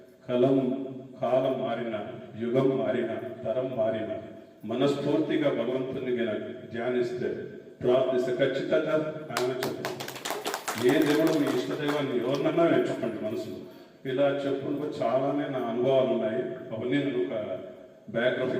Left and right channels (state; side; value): identical; both; correlation 1.00